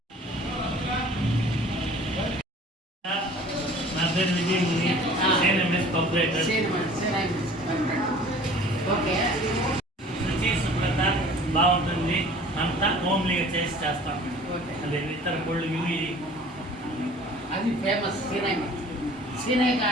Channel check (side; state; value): both; normal; correlation 0.48